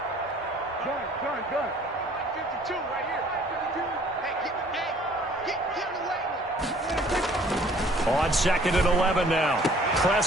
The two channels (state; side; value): normal; both; correlation 0.55